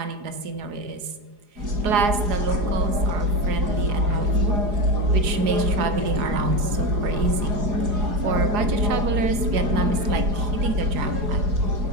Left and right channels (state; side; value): late; left; 4.8 ms